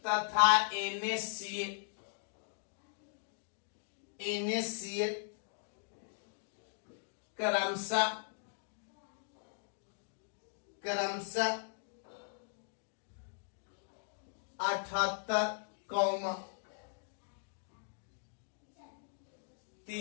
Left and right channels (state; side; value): silent; right; digital silence